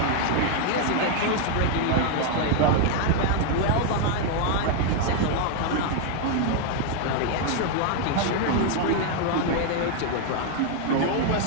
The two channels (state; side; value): different; both; correlation 0.00